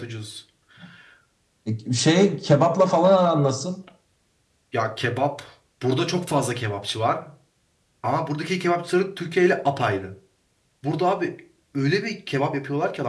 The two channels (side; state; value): both; identical; correlation 1.00